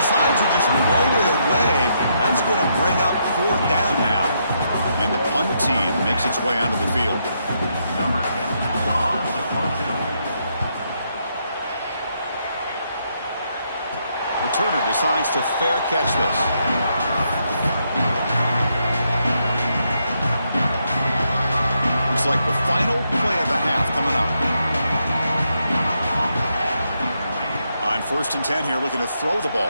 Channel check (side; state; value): both; inverted; correlation -0.78